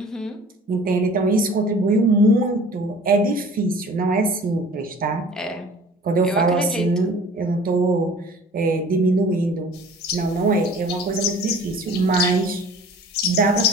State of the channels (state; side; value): normal; both; correlation 0.46